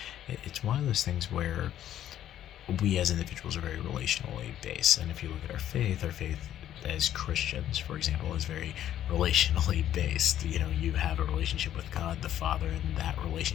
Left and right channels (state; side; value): quieter; right; 11.4 dB